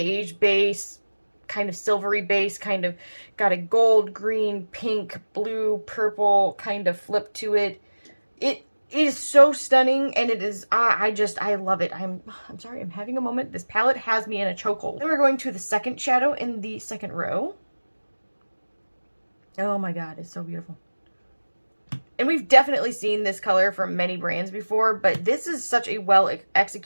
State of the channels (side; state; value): both; inverted; correlation -1.00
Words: base, kind of silvery base, kind of got a gold, green, pink, blue, purple kind of flip to it. It is so stunning, and it is, I love it. I'm sorry, I'm having a moment. This palette has me in a chokehold. Then we're going to the second shadow in the second row. Oh my god, it's so beautiful. And we've definitely seen this color from many brands before, but this is such a well